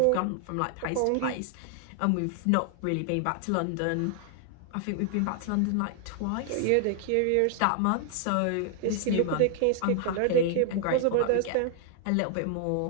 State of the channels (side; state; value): both; different; correlation 0.00